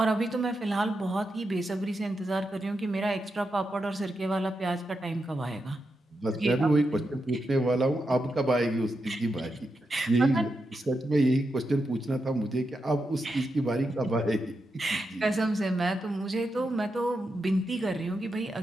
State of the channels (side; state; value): both; normal; correlation 0.87